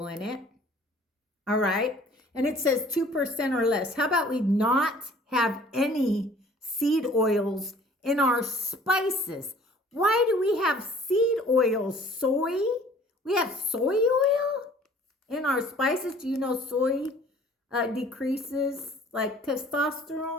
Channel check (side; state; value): both; normal; correlation 0.52